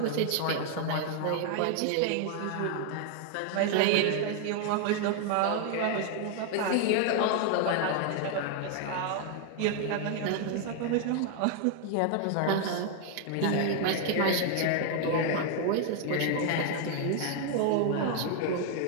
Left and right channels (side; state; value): both; different; correlation 0.00